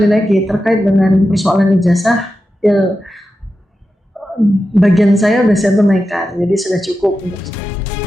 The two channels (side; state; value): both; normal; correlation 0.91